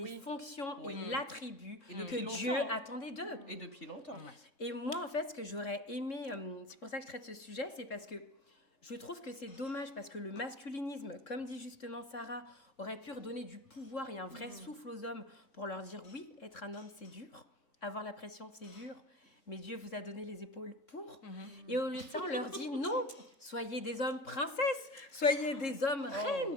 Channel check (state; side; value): late; right; 3.7 ms